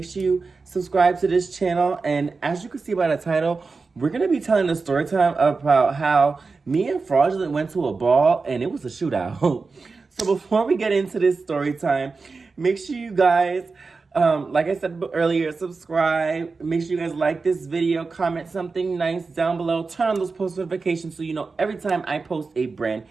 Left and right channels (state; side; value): quieter; left; 4.3 dB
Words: sure you subscribe to this channel. And as you can see by the title, we're going to be telling a story time about how me and Fraudulent went to a ball and it was a shootout. So before we get into this story time, make sure you guys like I said earlier, subscribe. Make sure you guys like this video, comment something nice down below, turn on those post notifications so you know every time I post a brand